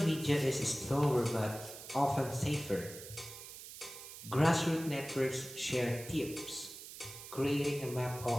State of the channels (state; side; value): noise; right; hiss, 13 dB below the sound